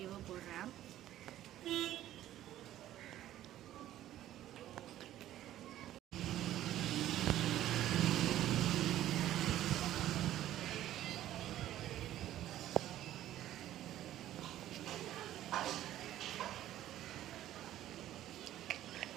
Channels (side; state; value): left; quieter; 13.1 dB